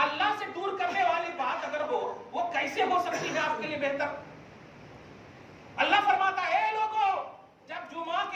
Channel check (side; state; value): both; identical; correlation 1.00